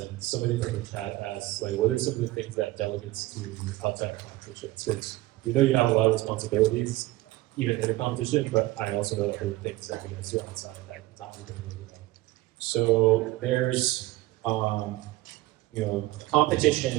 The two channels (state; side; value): quieter; left; 18.2 dB